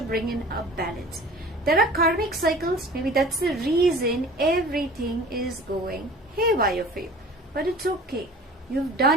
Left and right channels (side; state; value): both; normal; correlation 0.43